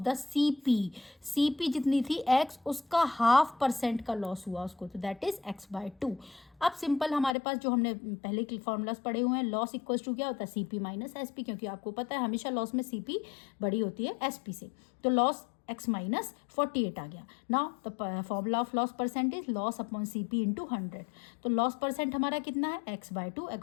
CP जितनी थी x, उसका हाफ परसेंट का लॉस हुआ उसको, तो दैट इज x/2। अब सिंपल हमारे पास जो हमने पहले के फॉर्मूलाज पढ़े हुए हैं, लॉस इक्वल्स टू क्या होता है? CP माइनस SP, क्योंकि आपको पता है हमेशा लॉस में CP बड़ी होती है SP से। तो लॉस x माइनस 48 आ गया। Now the formula of loss percentage loss upon CP into 100। तो लॉस परसेंट हमारा कितना है? x/2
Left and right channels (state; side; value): drops out; right; at 7.4 s